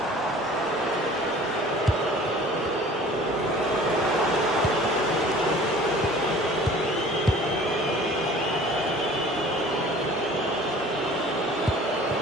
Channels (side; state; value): both; normal; correlation 0.47